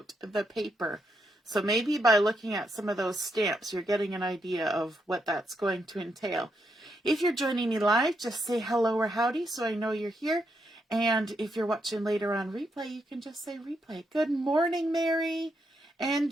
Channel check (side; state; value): both; normal; correlation 0.80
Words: the Paper. So maybe by looking at some of those stamps, you're getting an idea of what that's going to entail. If you're joining me live, just say hello or howdy so I know you're here. And if you're watching later on replay, you can just say replay. Good morning, Mary. And